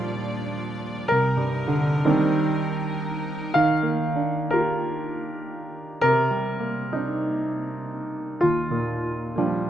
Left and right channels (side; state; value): both; normal; correlation 0.82